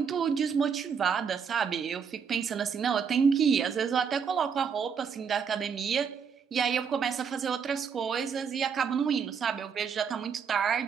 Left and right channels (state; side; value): quieter; left; 6.6 dB